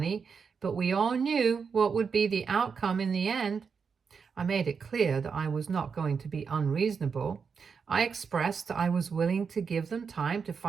but we all knew what would be the outcome in the end. I made it clear that I was not going to be unreasonable. I expressed I was willing to give them time to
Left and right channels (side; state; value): left; quieter; 5.9 dB